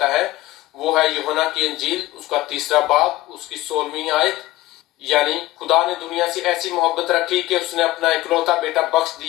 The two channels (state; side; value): quieter; right; 17.2 dB